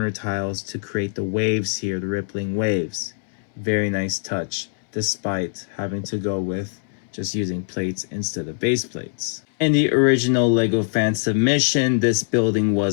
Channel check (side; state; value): right; silent; 63 dB below the other